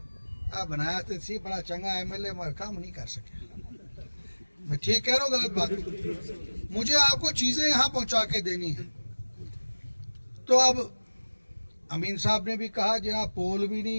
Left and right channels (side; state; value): both; inverted; correlation -1.00